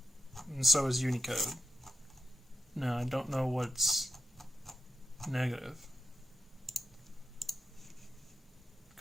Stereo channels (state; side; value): normal; both; correlation 0.87